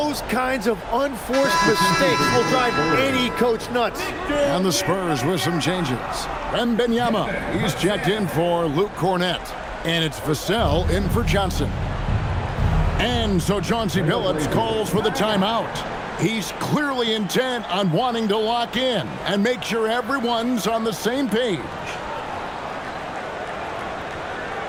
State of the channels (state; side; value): identical; both; correlation 1.00